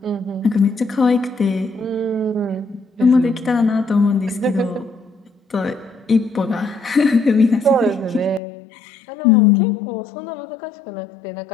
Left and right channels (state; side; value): drops out; right; at 8.4 s